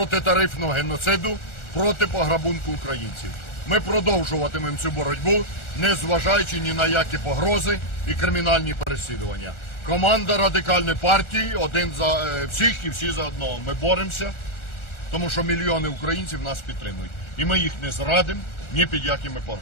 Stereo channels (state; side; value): late; right; 1.4 ms